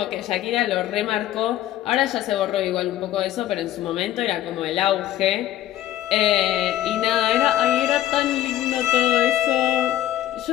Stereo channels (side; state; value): right; quieter; 13.2 dB